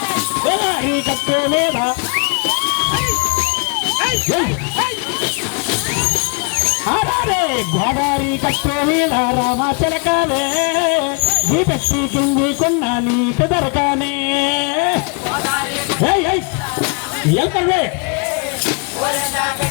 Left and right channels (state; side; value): quieter; right; 35.0 dB